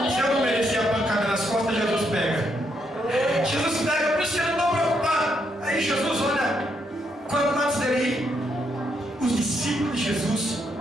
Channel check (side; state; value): both; normal; correlation 0.77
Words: Se eu não merecer a pancada nas costas, Jesus pega. Jesus pega, por isso que eu não estou preocupado. Aí Jesus olha, quando antes dele ir, os discípulos de Jesus